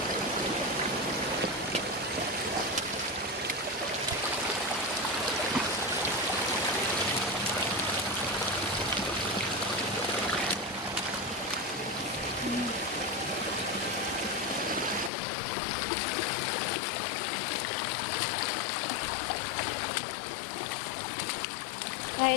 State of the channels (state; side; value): drops out; right; at 15.1 s